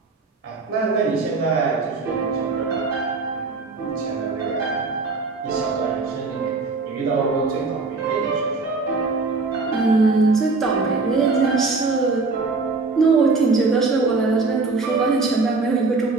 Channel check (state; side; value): quieter; left; 3.9 dB